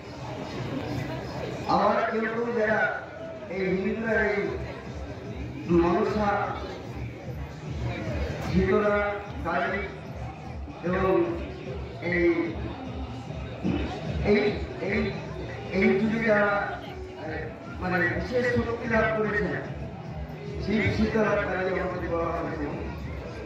আবার কেউ কেউ যারা এই হিন্দুরা এই মনসা, শীতলা, কালী এবং এই এই এই এই যুগে যারা মানে বিশেষ শক্তি লাভ করেছে, শিব শীতলা কালী আমাদের বলা হয়েছে,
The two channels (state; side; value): identical; both; correlation 1.00